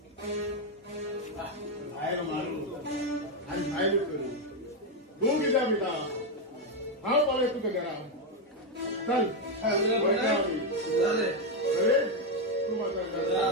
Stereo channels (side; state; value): both; normal; correlation 0.04